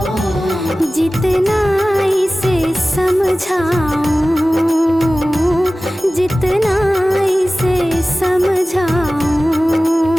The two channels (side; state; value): both; normal; correlation 0.97